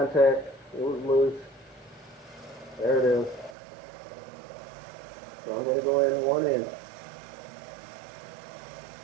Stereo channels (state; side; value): drops out; left; at 3.6 s